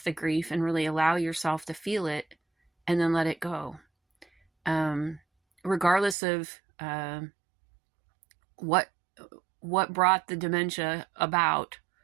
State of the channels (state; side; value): drops out; left; at 6.2 s